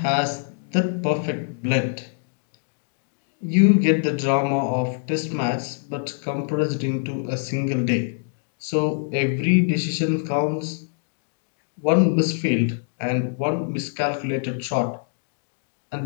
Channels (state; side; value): silent; right; 62 dB below the other